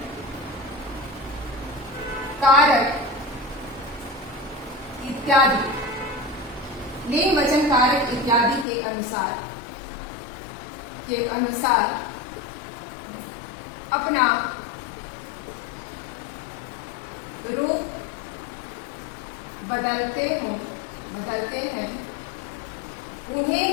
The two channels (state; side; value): drops out; right; at 8.7 s